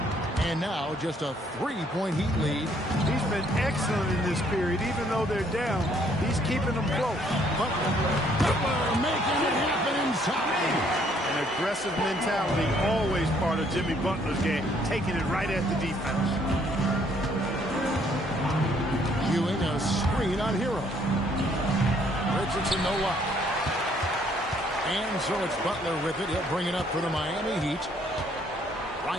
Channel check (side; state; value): both; normal; correlation 0.65